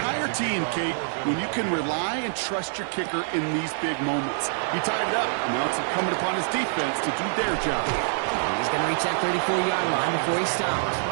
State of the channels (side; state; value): left; silent; 61 dB below the other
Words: team, Kate, when you can rely and trust your kicker in these big moments. He tied it up, and now it's incumbent upon his defense to do their job. And he's going to reach that 34-yard line before he stops.